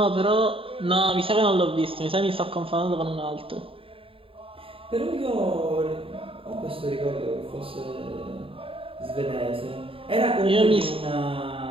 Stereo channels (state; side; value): late; left; 0.27 ms